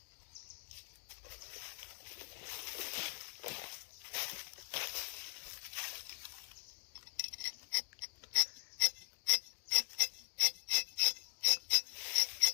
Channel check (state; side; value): silent; right; digital silence